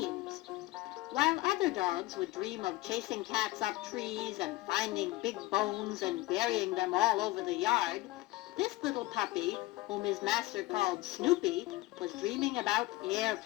While other dogs would dream of chasing cats up trees and finding big bones and burying them all over the yard, this little puppy, whom his master called Snoopy, was dreaming about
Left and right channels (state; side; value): quieter; right; 19.0 dB